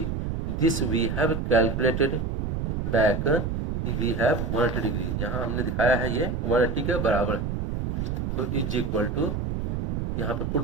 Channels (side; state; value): right; noise; rumble, 1 dB below the sound